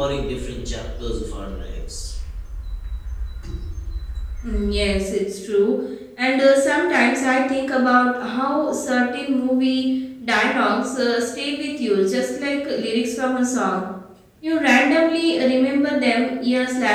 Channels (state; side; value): identical; both; correlation 1.00